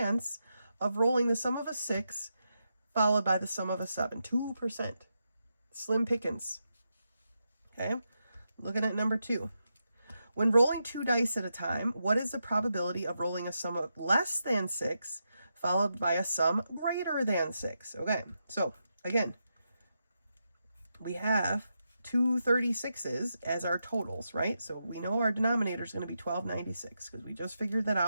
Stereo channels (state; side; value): inverted; both; correlation -0.86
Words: of rolling the sum of a 6 followed by the sum of a 7. 2%. Slim pickings. Okay, looking at number 2. When rolling 2 dice at a time, what is the probability of rolling a sum of less than 6 followed by a sum greater than 6? Okay, so again, we have 2 36s as our totals, right? So we know our denominator is going to be 1296 because we just figured that